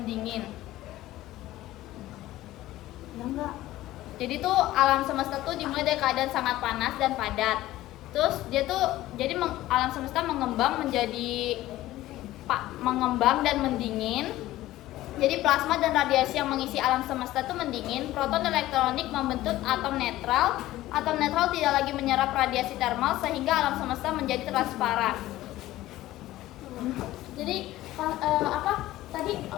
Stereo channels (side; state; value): right; quieter; 15.8 dB